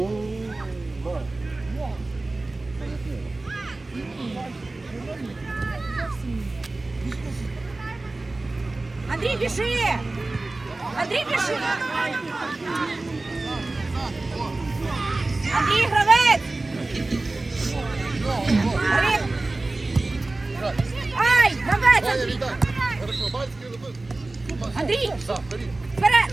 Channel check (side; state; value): left; quieter; 3.1 dB